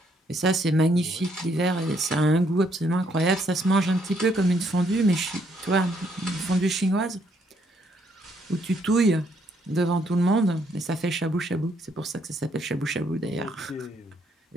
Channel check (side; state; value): both; normal; correlation 0.71